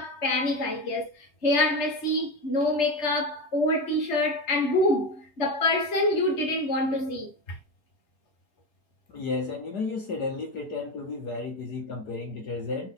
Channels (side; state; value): right; late; 3.3 ms